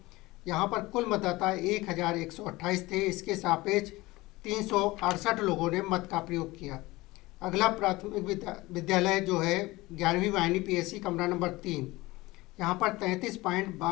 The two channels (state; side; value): quieter; right; 20.4 dB